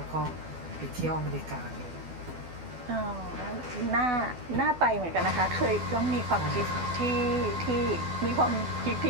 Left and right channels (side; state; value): left; late; 12 ms